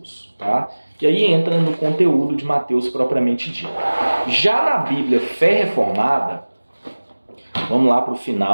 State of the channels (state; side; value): inverted; both; correlation -1.00